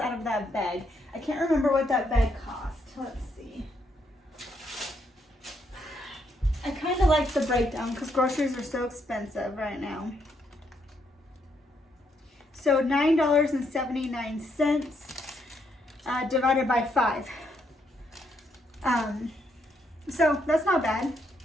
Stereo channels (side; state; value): both; normal; correlation 0.75